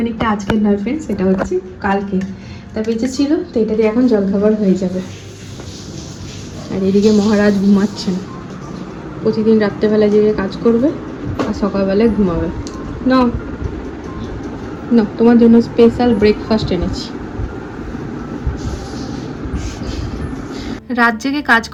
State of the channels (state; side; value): identical; both; correlation 1.00